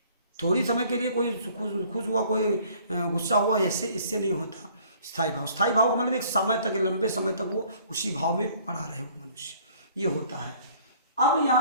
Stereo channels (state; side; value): inverted; both; correlation -0.56